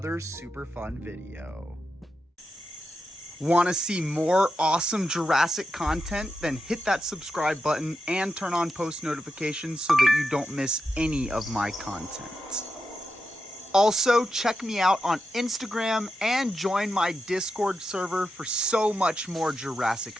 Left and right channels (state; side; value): normal; both; correlation 0.88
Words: super fun video. Want to see more awesome Jurassic content? Then hit that subscribe button and turn on post notifications so that you don't miss any of my content. Also, check me out on Instagram and join my Discord server for so much more Jurassic